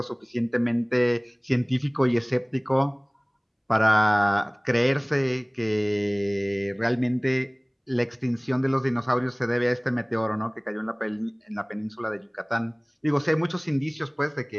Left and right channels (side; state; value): both; identical; correlation 1.00